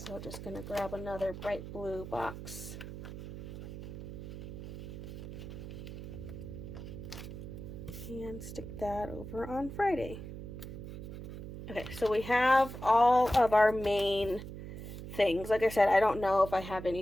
just going to grab another bright blue box. And stick that over on Friday. Okay, so we have all of our main things. Like I said, I don't know if I have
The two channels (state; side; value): noise; right; hum, 10 dB below the sound